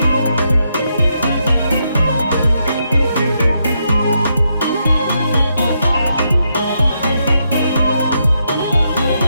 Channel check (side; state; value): both; inverted; correlation -0.80